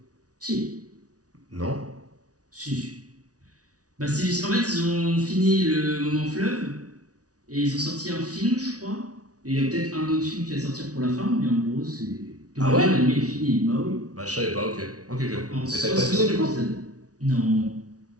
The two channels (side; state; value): left; late; 0.68 ms